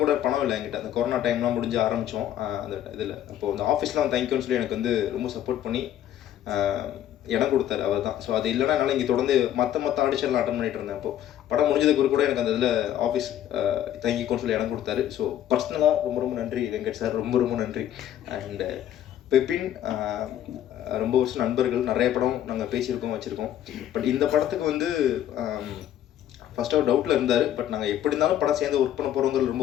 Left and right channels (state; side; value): quieter; right; 11.4 dB